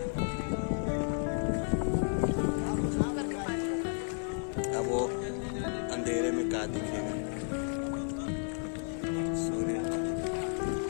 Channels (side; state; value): right; silent; 56 dB below the other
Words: अब वो अंधेरे में क्या दिखेगा? सूर्य।